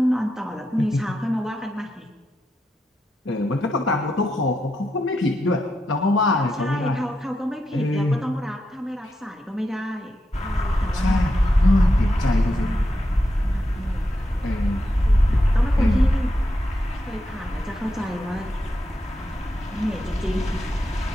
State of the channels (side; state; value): both; normal; correlation 0.85